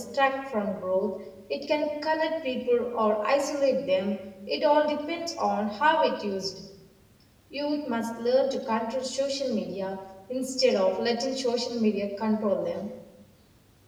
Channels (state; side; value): identical; both; correlation 1.00